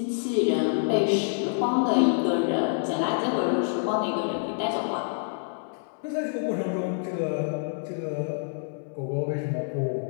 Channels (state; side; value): silent; right; digital silence